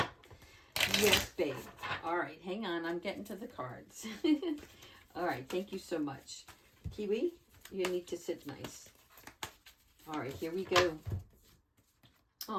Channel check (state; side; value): identical; both; correlation 1.00